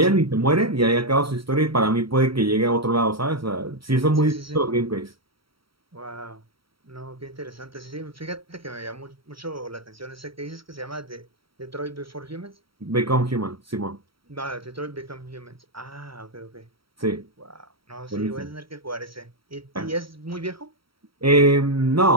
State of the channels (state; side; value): late; left; 0.75 ms